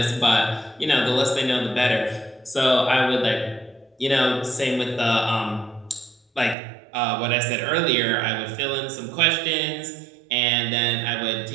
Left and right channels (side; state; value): left; drops out; at 6.6 s